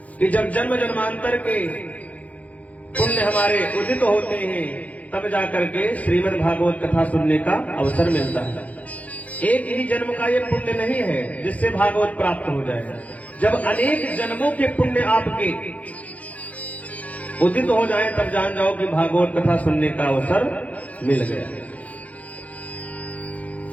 कि जब जन्म जन्मांतर के पुण्य हमारे उदित होते हैं तब जाकर के श्रीमद् भागवत कथा सुनने का अवसर मिलता है। एक ही जन्म का ये पुण्य नहीं है जिससे भागवत प्राप्त हो जाए। जब अनेक जन्मों के पुण्य आपके उदित हो जाए तब जान जाओ कि भागवत कथा सुनने का अवसर मिल गया।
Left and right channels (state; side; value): late; right; 0.070 ms